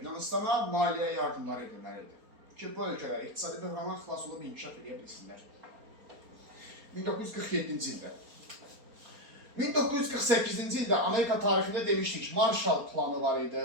Yunanistana maliyyə yardımları edilməlidir ki, bu ölkələr iqtisadi böhrandan xilas olub inkişaf edə bilsinlər. 1947-ci ildə. 1948-ci ildə Amerika tarixində demişdik, Marshall planı var idi.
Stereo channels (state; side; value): late; left; 4.3 ms